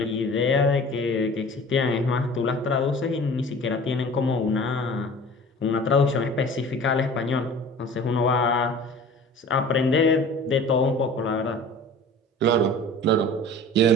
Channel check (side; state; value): both; normal; correlation 0.42